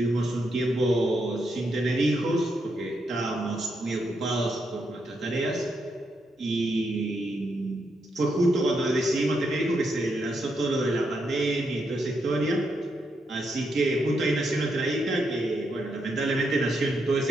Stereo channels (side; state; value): both; normal; correlation 0.81